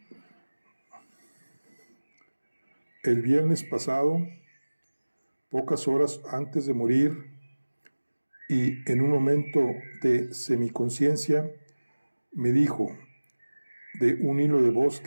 El viernes pasado, pocas horas antes de morir, y en un momento de semiconciencia, me dijo de un hilo de voz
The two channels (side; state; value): both; inverted; correlation -1.00